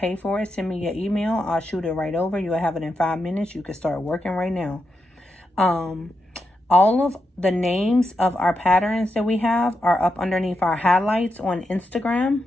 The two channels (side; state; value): both; normal; correlation 0.86